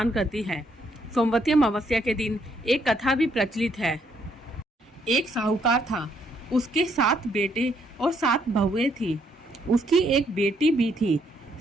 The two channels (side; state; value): both; normal; correlation 0.71